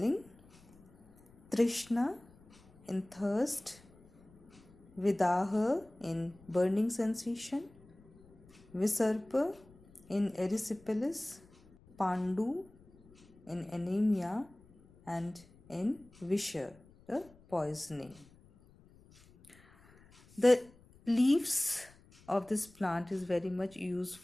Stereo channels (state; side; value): noise; left; rumble, 26 dB below the sound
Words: Trishna in thirst. Vidaha in burning sensation. Visarpa in erysipelas. Pandu in anemia, and in Visha, the poisoning. The leaves of this plant is very much